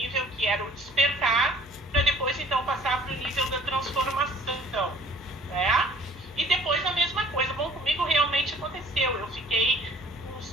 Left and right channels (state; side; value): normal; both; correlation 0.52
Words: que era o despertar, para depois então passar para o nível da transformação, né? E depois a mesma coisa. Bom, comigo realmente aconteceu. Eu fiquei